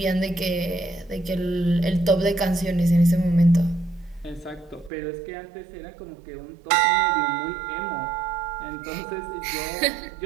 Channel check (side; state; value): left; drops out; at 4.9 s